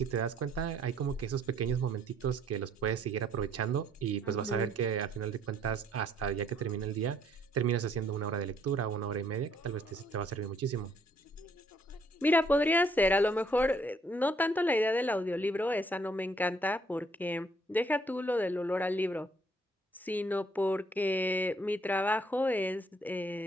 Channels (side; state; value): both; normal; correlation 0.65